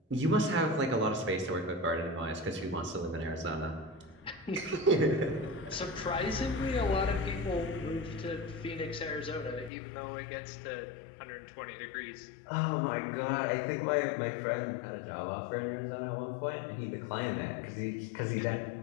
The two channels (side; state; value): right; drops out; at 9.7 s